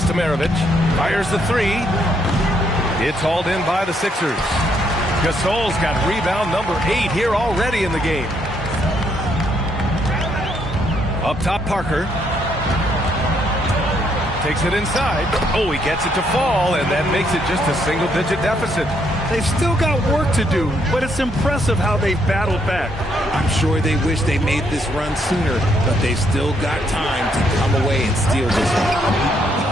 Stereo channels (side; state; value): both; normal; correlation 0.73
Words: to Maravich. Fires the 3. It's hauled in by the Sixers. Gasol's got rebound number 8 here already in the game. Up top, Parker. takes it inside. Oh, he gets it to fall, and that makes it just a single-digit deficit. They've still got work to do, but it's impressive how they've battled back. I'm sure they wish they made this run sooner, but they've still got time to come away and steal this